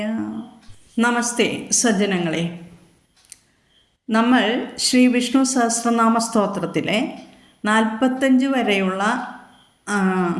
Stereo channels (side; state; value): both; identical; correlation 1.00